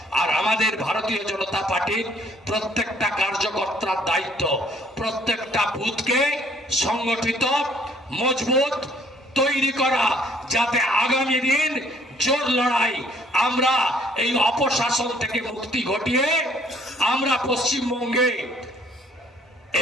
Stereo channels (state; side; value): normal; both; correlation 0.61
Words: আর আমাদের ভারতীয় জনতা পার্টির প্রত্যেকটা কার্যকর্তার দায়িত্ব প্রত্যেকটা বুথকে সংগঠিত, মজবুত তৈরি করা, যাতে আগামী দিন জোর লড়াই আমরা এই অপশাসন থেকে মুক্তি ঘটিয়ে আমরা পশ্চিমবঙ্গে